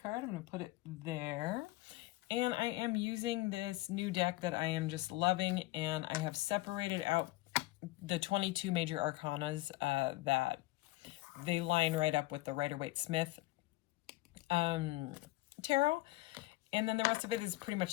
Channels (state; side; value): quieter; right; 19.3 dB